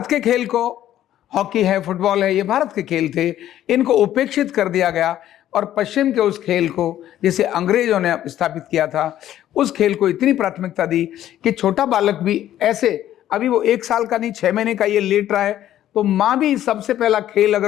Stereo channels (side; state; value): right; quieter; 12.2 dB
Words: के खेल को, हॉकी है, फुटबॉल है, ये भारत के खेल थे, इनको उपेक्षित कर दिया गया और पश्चिम के उस खेल को जिसे अंग्रेजों ने स्थापित किया था, उस खेल को इतनी प्राथमिकता दी कि छोटा बालक भी ऐसे, अभी वो 1 साल का नहीं 6 महीने का ये लेट रहा है, तो माँ भी सबसे पहला खेल